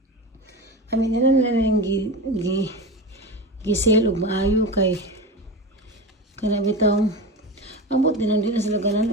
Amin nila ning gisel og maayo kay kana bitaw ambot din na sila ganahan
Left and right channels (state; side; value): normal; both; correlation 0.25